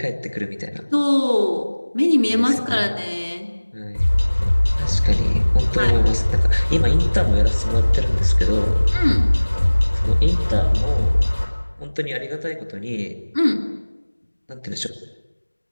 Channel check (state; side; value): inverted; both; correlation -1.00